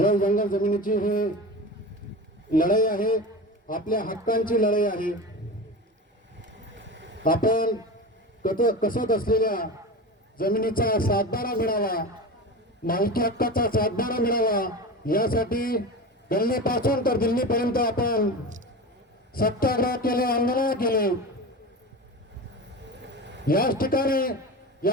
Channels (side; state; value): both; normal; correlation 0.28